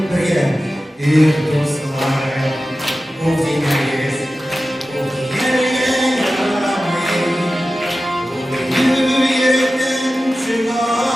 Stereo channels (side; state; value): both; normal; correlation 0.94